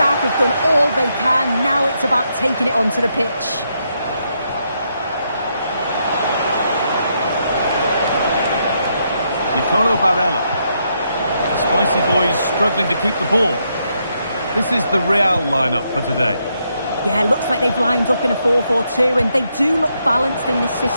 have done all they can. Now it's about taking it onto the pitch. Nicolo Barella. The Spicy Boys struggling to keep the ball. This is the Real lineup for today. Yeah, looks like they've lined up in a 4-4-2, and they do look balanced in this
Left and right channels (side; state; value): both; inverted; correlation -0.78